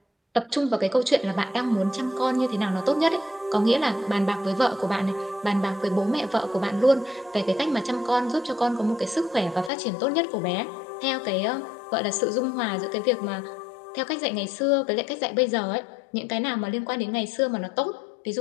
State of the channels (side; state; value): right; drops out; at 9.7 s